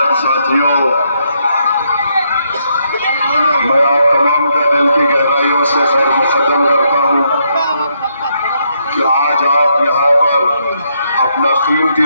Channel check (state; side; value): inverted; both; correlation -0.76